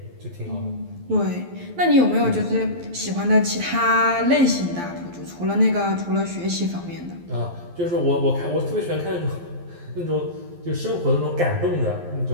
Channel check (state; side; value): late; left; 11 ms